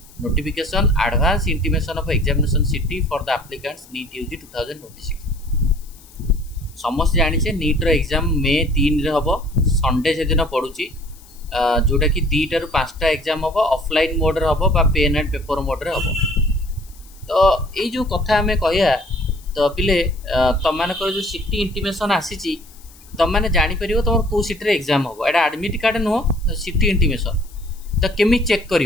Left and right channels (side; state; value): left; noise; hiss, 24 dB below the sound